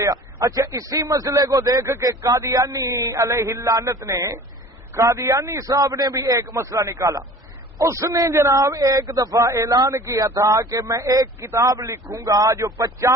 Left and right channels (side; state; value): both; normal; correlation 0.44